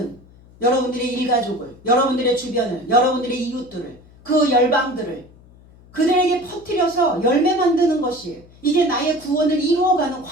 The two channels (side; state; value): left; noise; hum, 25 dB below the sound